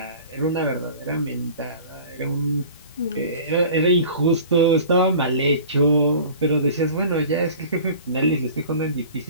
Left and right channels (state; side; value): inverted; both; correlation -0.42